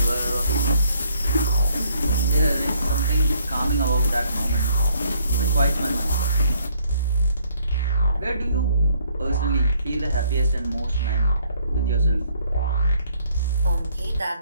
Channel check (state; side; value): inverted; both; correlation -0.64